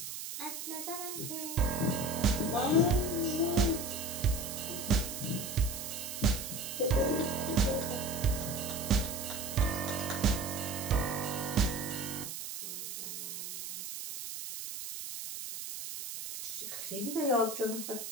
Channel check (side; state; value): right; noise; hiss, 7 dB below the sound